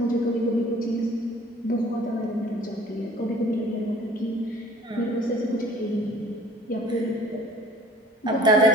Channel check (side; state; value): both; normal; correlation 0.51